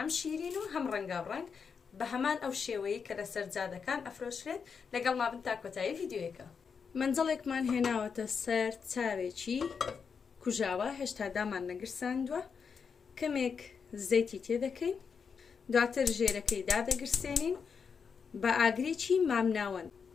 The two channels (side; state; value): right; quieter; 6.0 dB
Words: شیرین و هەم ڕەنگاو ڕەنگ بە هەمان ئەو شێوەیە کە لەسەر جادەکان ئەفرۆشرێت لەگەڵ مابن تا کۆتایی ڤیدیۆیەکە. منجەڵێکمان هێناوەتە سەر چاوێکی کوژاوە هێشتا دامان نەگرساندووە، کەمێک زەیتی تێدەکەین، دواتر ژێرەکەی دادەگرسێنین بە ئاگرێکی مامناوەند.